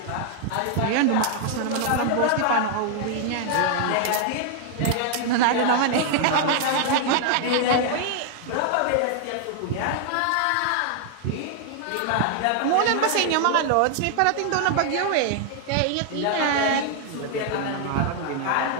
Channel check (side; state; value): both; different; correlation 0.00